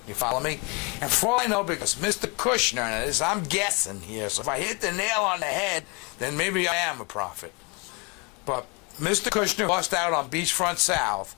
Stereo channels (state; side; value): quieter; right; 30.4 dB